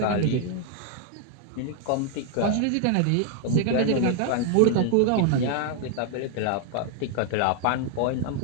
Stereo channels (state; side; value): different; both; correlation 0.00